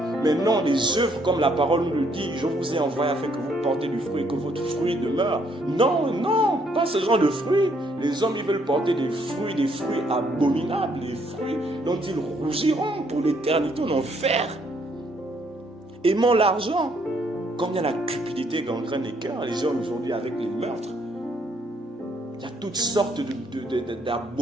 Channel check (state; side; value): normal; both; correlation 0.69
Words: Mais non, les œuvres, comme la parole nous le dit, je vous ai envoyé afin que vous portez du fruit, que votre fruit demeure. Non, pas ce genre de fruits. Les hommes, ils veulent porter des fruits abominables, des fruits dont ils rougiront pour l'éternité en enfer. Aimant l'argent. Combien la cupidité gangrène les cœurs, les gens aujourd'hui avec les meurtres. Il y a toutes sortes